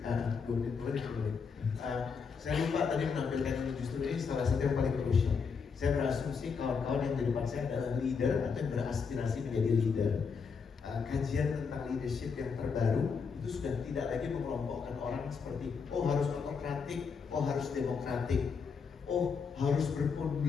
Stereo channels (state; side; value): quieter; right; 5.7 dB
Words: Boleh. Saya lupa tadi menampilkan ini, justru ini salah satu yang paling krusial. Saya berasumsi kawan-kawan yang di depan saya adalah leader atau yang beraspirasi menjadi leader. Kajian tentang leadership yang terbaru itu sudah tidak lagi mengelompokkan orang seperti harus otokratik, harus demokratik, harus